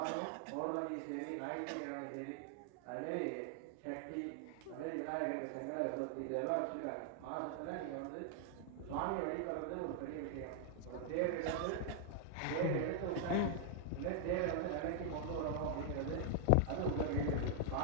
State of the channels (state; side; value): different; both; correlation 0.00